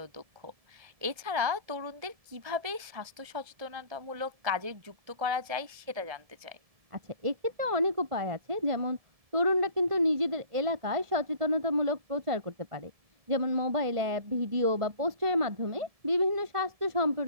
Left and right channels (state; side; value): late; left; 1.7 ms